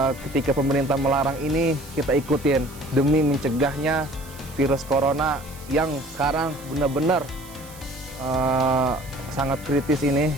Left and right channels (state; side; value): noise; right; hiss, 19 dB below the sound